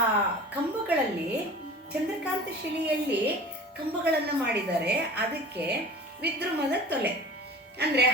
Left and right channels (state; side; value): normal; both; correlation 0.40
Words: ಕಂಬಗಳಲ್ಲಿ ಚಂದ್ರಕಾಂತ ಶಿಲೆಯಲ್ಲಿ ಕಂಬಗಳನ್ನು ಮಾಡಿದ್ದಾರೆ. ಅದಕ್ಕೆ ವಿದ್ರುಮದ ತೊಲೆ ಅಂದರೆ